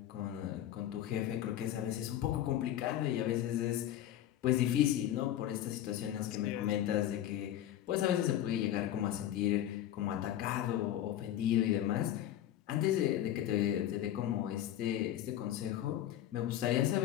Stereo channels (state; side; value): quieter; right; 12.1 dB